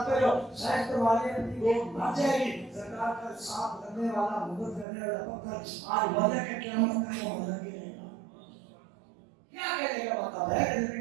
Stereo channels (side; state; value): left; drops out; at 4.9 s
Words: جو سائنس کے والے اپنی وہ مر جائے گی سرکار کا ساتھ کرنے والا مدد کرنے والا پتھر آج وجہ کے قیامت کا وہ لگی رہے گا کیا کہنے کا مطلب ہے کہ